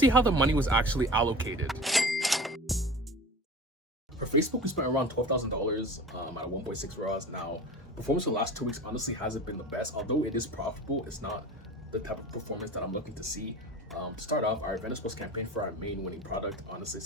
how the money was actually allocated. For Facebook, we spent around $12,000 at a 1.6 ROAS. Now, performance for the last 2 weeks honestly hasn't been the best. Although it is profitable, it's not the type of performance that I'm looking to see. To start off, our Venice Plus campaign for our main winning product honestly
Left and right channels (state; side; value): normal; both; correlation 0.37